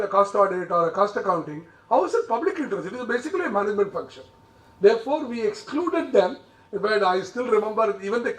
a cost audit or a cost accounting, how is it public interest? It is basically a management function. Therefore, we excluded them. But I still remember even the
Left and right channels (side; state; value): both; identical; correlation 1.00